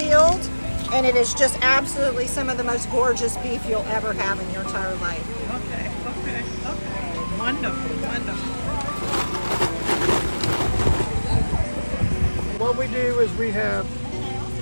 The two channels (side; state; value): both; inverted; correlation -1.00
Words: And it is just absolutely some of the most gorgeous beef you'll ever have in your entire life. Okay. Wonderful. What we do is we have